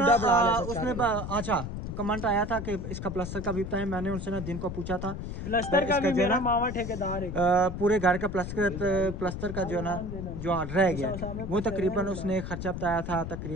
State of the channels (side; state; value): left; noise; rumble, 6 dB below the sound